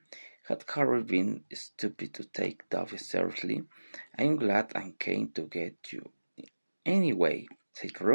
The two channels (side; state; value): both; inverted; correlation -1.00